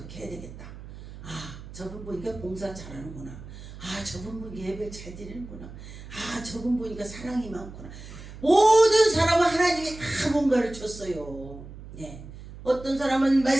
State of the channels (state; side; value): noise; right; hum, 14 dB below the sound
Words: 해야 되겠다. 저분 보니까 봉사 잘하는구나. 저분 보니까 예배 잘 드리는구나. 저분 보니까 사랑이 많구나. 모든 사람은 하나님이 다 뭔가를 줬어요. 어떤 사람은